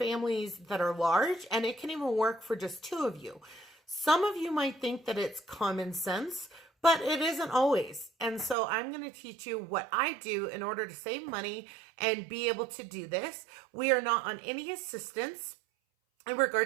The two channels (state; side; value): drops out; left; at 8.6 s